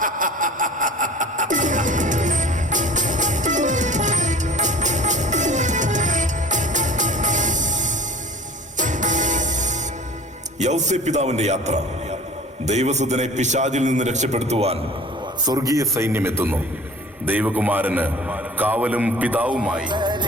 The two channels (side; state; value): both; normal; correlation 0.44